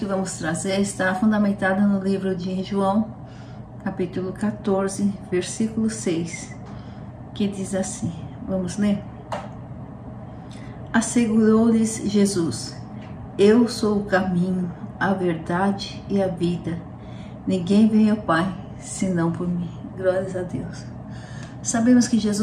vamos trazer está fundamentada no livro de João, capítulo 14, versículo 6, que diz assim. Vamos ler? Assegurou-lhes Jesus: Eu sou o caminho, a verdade e a vida. Ninguém vem ao Pai, senão por mim. Glórias a Deus. Sabemos que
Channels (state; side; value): identical; both; correlation 1.00